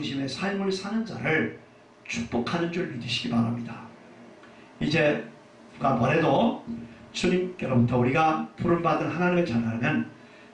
삶을 사는 자를 축복하는 줄 믿으시기 바랍니다. 이제 누가 뭐래도 주님께로부터 우리가 부름받은 하나님의 자라면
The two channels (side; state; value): both; identical; correlation 1.00